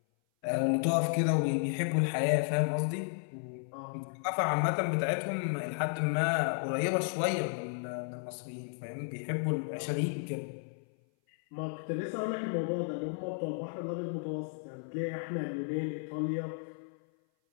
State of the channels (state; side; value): silent; right; 56 dB below the other